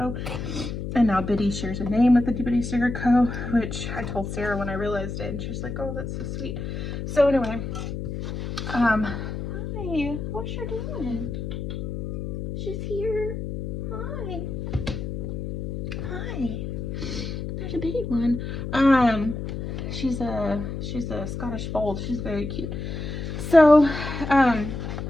And now Biddy shares a name with Itty Bitty Sticker Co., which I told Sarah when I realized it, and she's like, oh, that's so sweet. So anyway, hi, what's she doing? She's here. Hi. Hi. There's a bitty one. She's a Scottish fold. She's very cute. So,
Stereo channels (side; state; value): left; noise; hum, 5 dB below the sound